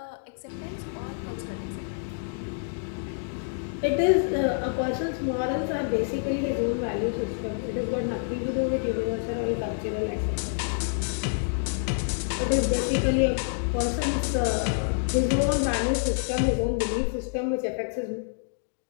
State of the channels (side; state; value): right; silent; digital silence